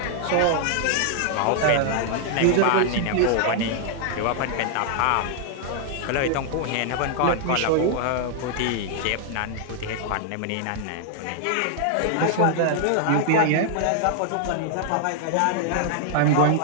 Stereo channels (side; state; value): both; different; correlation 0.00